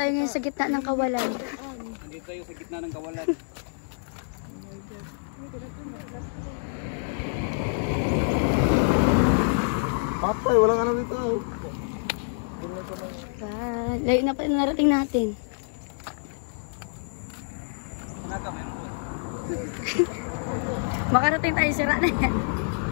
ngayon sa gitna ng kawalan. Nandito tayo sa gitna ng kawalan. Patay, walang ano dito. Layo na pa narating natin. Makarating tayo, sira na yan.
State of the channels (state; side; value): silent; right; 60 dB below the other